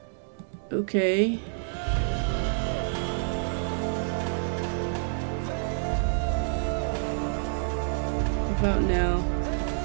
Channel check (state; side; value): silent; left; digital silence